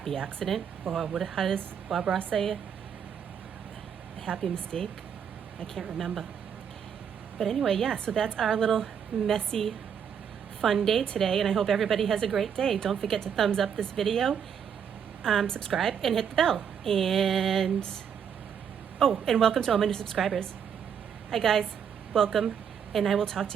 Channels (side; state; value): left; quieter; 7.8 dB